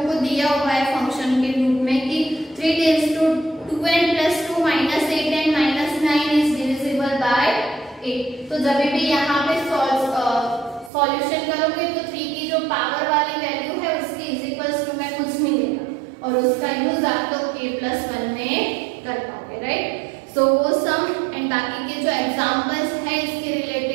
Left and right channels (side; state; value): left; drops out; at 10.9 s